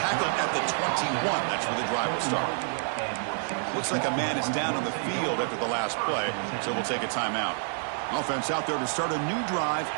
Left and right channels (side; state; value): left; silent; 58 dB below the other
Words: at the 21. That's where the drive will start. Looks like a man is down on the field after the last play, so we'll take a timeout. Offense out there to start a new drive